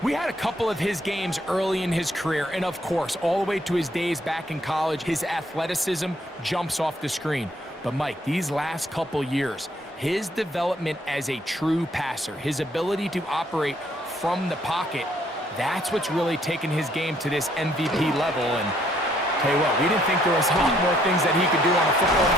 We had a couple of his games early in his career, and of course, all the way to his days back in college, his athleticism jumps off the screen. But Mike, these last couple years, his development as a true passer, his ability to operate from the pocket, that's what's really taken his game to this MVP level. And tell you what, we didn't think there was a lot more things that he could do on a football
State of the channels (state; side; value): normal; both; correlation 0.67